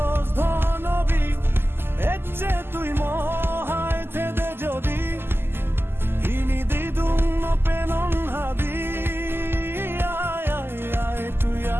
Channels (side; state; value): left; late; 0.11 ms